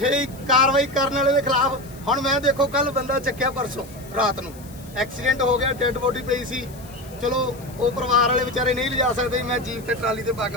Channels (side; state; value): left; noise; hiss, 22 dB below the sound